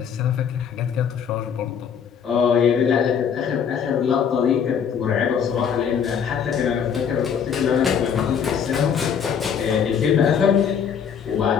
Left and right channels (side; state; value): right; quieter; 7.5 dB